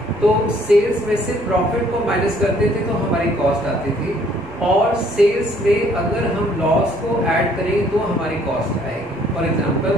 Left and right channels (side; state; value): both; normal; correlation 0.62